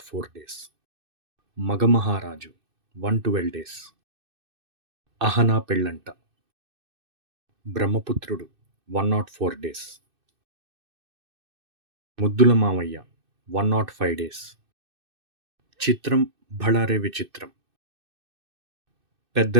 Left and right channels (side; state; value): left; late; 2.6 ms